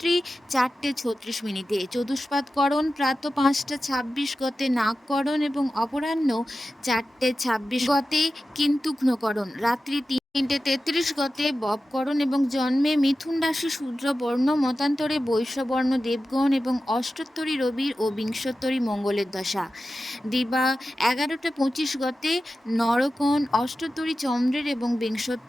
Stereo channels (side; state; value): both; normal; correlation 0.93